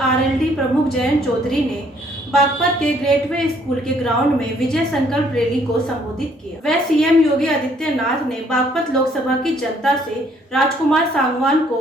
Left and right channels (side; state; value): both; normal; correlation 0.64